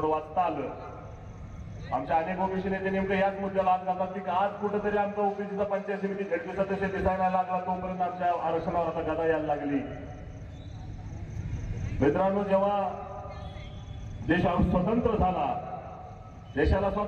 वाचता आलं. आमच्या अनेक ओबीसी नेते नेमकं याच मुद्द्याला हात घालतात की आज कुठेतरी आमचा ओबीसीचा पंचायत समिती झडपी सदस्य दिसायला लागला, तोपर्यंत आमच्या आरक्षणावर आता गदा यायला लागली. मित्रांनो, जेव्हा देश स्वतंत्र झाला, देशाला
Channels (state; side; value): identical; both; correlation 1.00